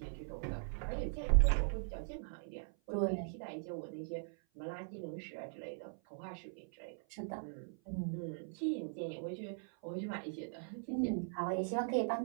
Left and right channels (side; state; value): left; silent; 51 dB below the other